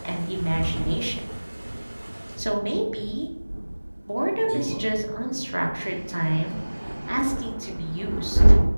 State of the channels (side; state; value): both; inverted; correlation -1.00